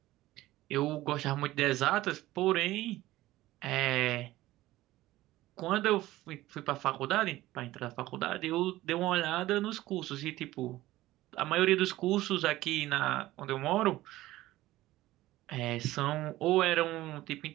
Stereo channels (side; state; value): left; quieter; 16.6 dB